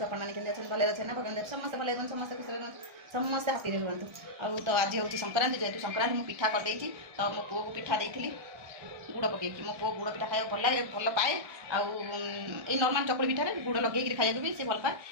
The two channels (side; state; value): left; late; 1.3 ms